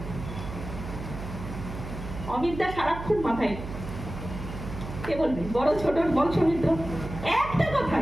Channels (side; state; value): right; noise; hum, 9 dB below the sound